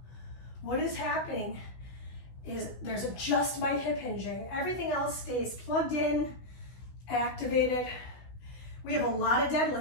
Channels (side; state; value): right; late; 16 ms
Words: What is happening is there's just my hip hinging. Everything else stays plugged in, activated. We have a lot of